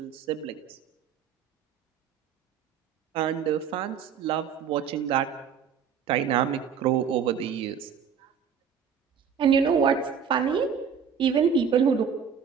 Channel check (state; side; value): quieter; left; 7.2 dB